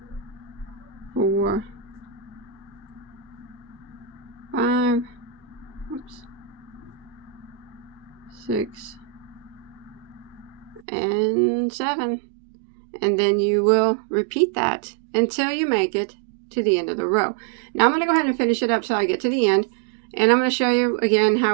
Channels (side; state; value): left; drops out; at 10.9 s